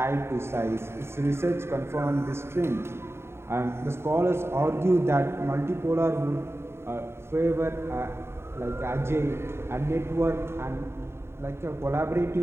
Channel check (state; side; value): late; left; 0.12 ms